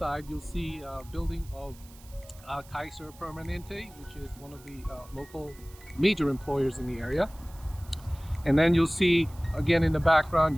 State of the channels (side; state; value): right; noise; hiss, 23 dB below the sound